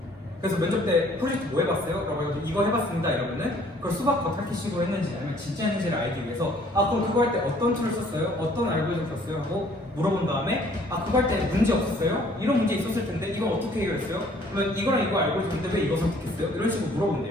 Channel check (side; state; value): both; normal; correlation 0.58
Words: 그래서 면접 때 프로젝트 뭐 해봤어요? 라고 해서 이거 해봤습니다 이러면은 그걸 수박 겉핥기식으로 했는지 아니면 진짜 했는지를 알기 위해서 그럼 그거 할 때 어떤 툴을 썼어요? 어떤 알고리즘 썼어요? 하고 물어본 다음에 그거 할 때 문제 없었어요? 이런 문제 있었을 텐데 이건 어떻게 해결했어요? 그러면 이거랑 이거 알고리즘인데 왜 이거 선택했어요? 이런 식으로